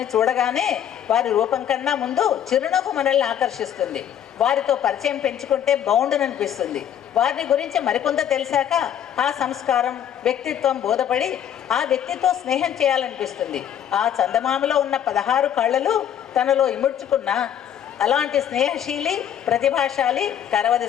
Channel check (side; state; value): right; quieter; 9.7 dB